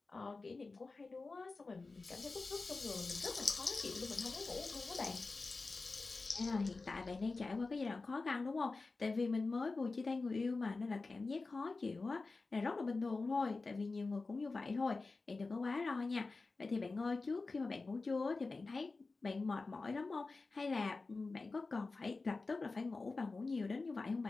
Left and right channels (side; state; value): right; quieter; 3.8 dB